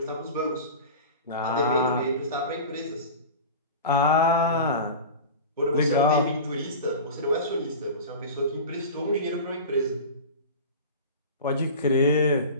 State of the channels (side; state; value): both; inverted; correlation -0.32